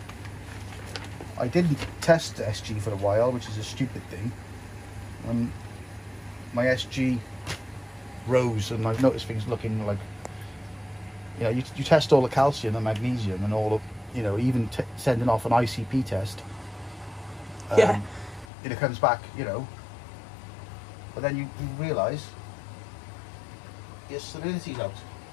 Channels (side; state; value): right; drops out; at 18.4 s